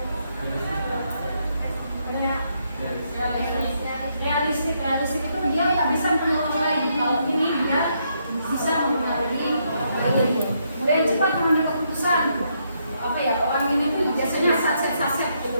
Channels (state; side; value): inverted; both; correlation -0.76